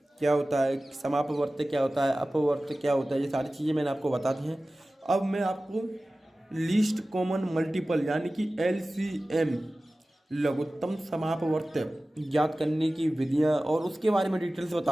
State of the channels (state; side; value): normal; both; correlation 0.96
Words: क्या होता है, समापवर्त्य क्या होता है, अपवर्त्य क्या होता है, ये सारी चीज़ें मैंने आपको बता दी हैं। अब मैं आपको लीस्ट कॉमन मल्टीपल यानी कि LCM लघुत्तम समापवर्त्य ज्ञात करने की विधियाँ और उसके बारे में डिटेल्स